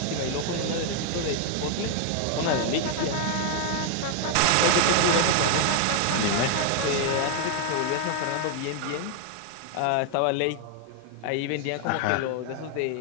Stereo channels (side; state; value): both; different; correlation 0.00